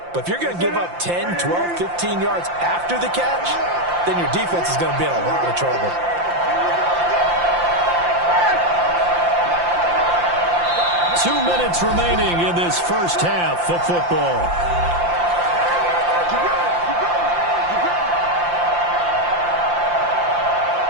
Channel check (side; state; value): left; late; 5.8 ms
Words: But if you're going to give up 10, 12, 15 yards after the catch, then your defense is going to be in a lot of trouble. Two minutes remaining in this first half of football.